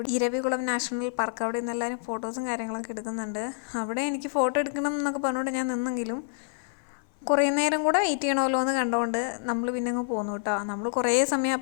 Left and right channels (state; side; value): silent; right; 60 dB below the other